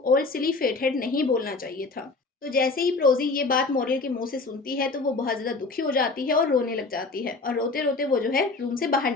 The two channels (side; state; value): right; quieter; 3.7 dB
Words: ओल्ड सिली फेटहेड नहीं बोलना चाहिए था। तो जैसे ही प्रोज़ी ये बात मॉरल के मुँह से सुनती है, तो वो बहुत ज़्यादा दुखी हो जाती है और रोने लग जाती है और रोते-रोते वो जो है रूम से बाहर